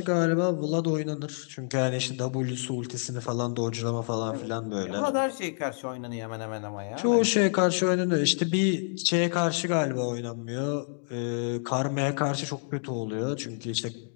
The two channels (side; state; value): right; silent; digital silence